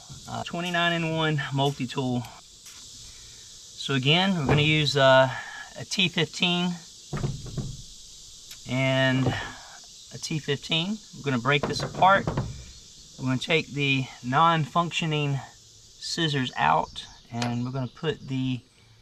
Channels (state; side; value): identical; both; correlation 1.00